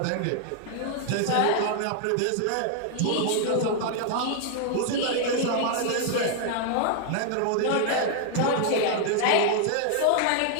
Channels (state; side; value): different; both; correlation 0.00